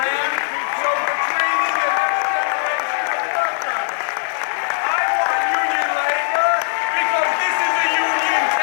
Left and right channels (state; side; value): silent; right; digital silence